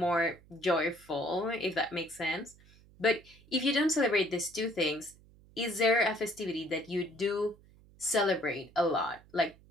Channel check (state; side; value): noise; right; hum, 26 dB below the sound